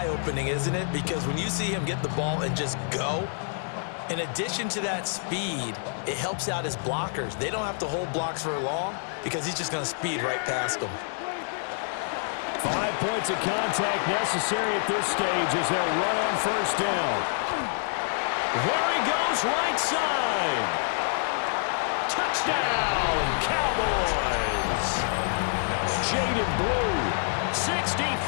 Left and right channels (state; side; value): silent; right; digital silence